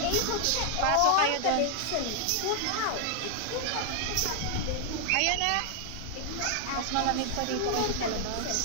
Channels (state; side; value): different; both; correlation 0.00